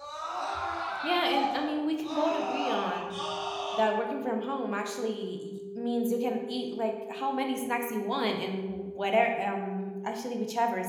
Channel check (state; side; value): identical; both; correlation 1.00